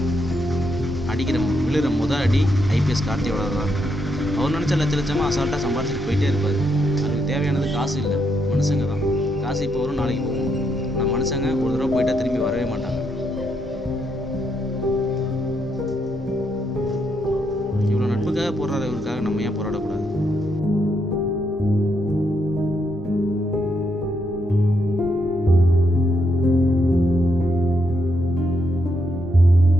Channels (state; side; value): normal; both; correlation 0.78